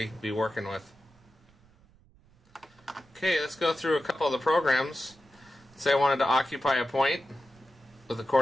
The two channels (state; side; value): noise; right; rumble, 29 dB below the sound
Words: be working with. Okay, let's go through a couple of the programs. Say I wanted to occupy a point with the